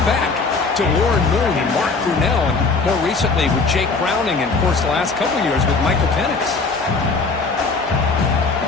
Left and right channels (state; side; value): quieter; right; 4.2 dB